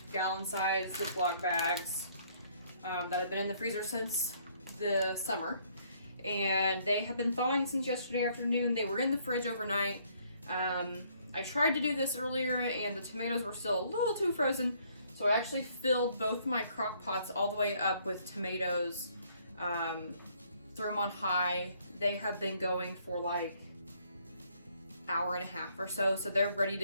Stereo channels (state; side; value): inverted; both; correlation -0.65